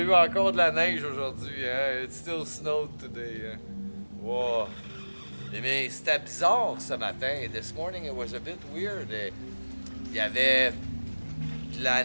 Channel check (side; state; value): both; inverted; correlation -1.00